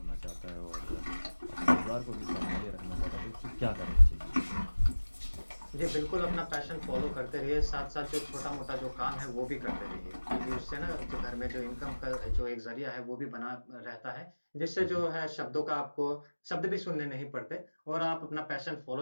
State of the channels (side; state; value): both; inverted; correlation -1.00